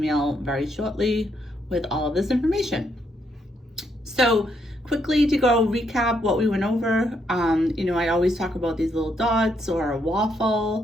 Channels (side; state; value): both; normal; correlation 0.76